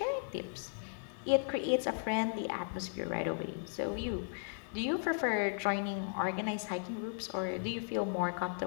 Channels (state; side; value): silent; right; digital silence